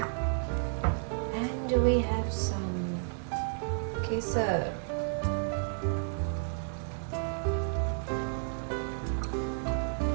And we have some kesar.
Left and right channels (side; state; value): left; silent; digital silence